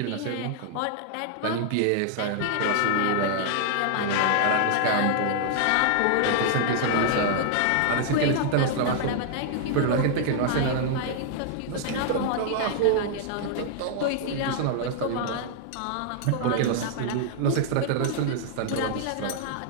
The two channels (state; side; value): different; both; correlation -0.01